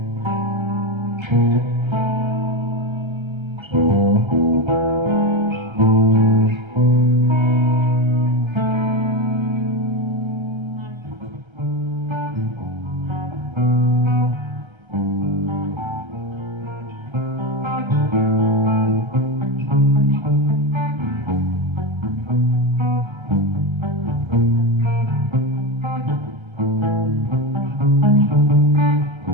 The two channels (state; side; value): late; left; 1.3 ms